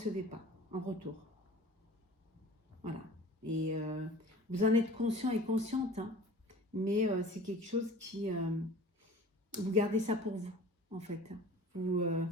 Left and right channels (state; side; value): normal; both; correlation 0.43